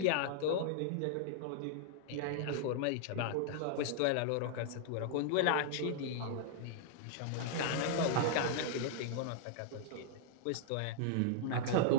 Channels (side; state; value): both; different; correlation -0.01